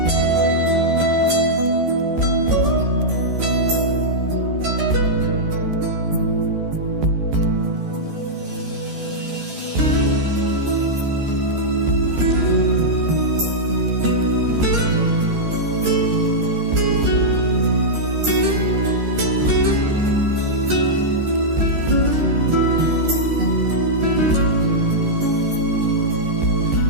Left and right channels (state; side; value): late; left; 14 ms